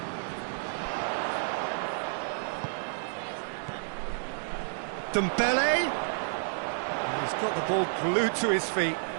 Dembele. He's got the ball glued to his feet.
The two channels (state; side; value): silent; left; digital silence